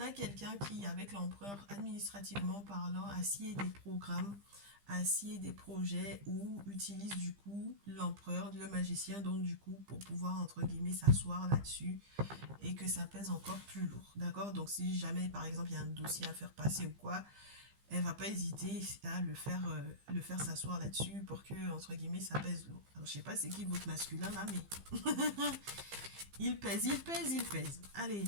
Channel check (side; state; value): left; late; 15 ms